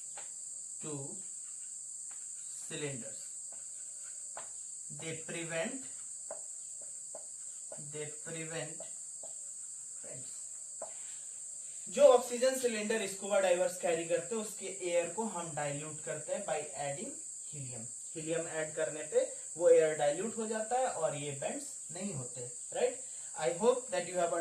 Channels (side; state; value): both; identical; correlation 1.00